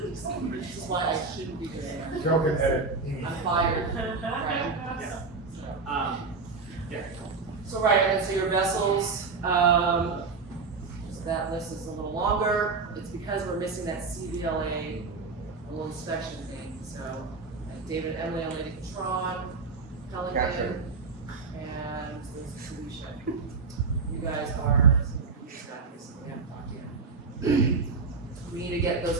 is why I shouldn't be doing it. Joking, Ed. I'm fired. Right. Yeah. Yeah. So right, and then so your vessels, list is a little longer, it's because we're missing that CVLA little inspection thing, so David and Emily on Lady Patron, Pelican, and there's Felicia. You guys are some of the staffers, so we haven't talked yet. We need to get those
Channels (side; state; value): left; quieter; 4.4 dB